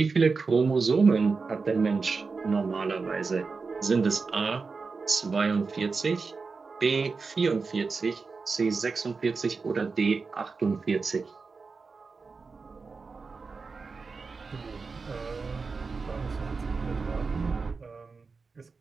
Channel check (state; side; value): quieter; left; 4.5 dB